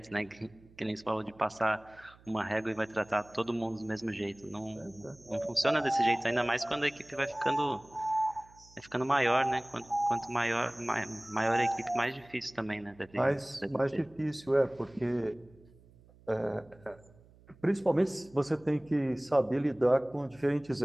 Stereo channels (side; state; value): right; noise; hum, 26 dB below the sound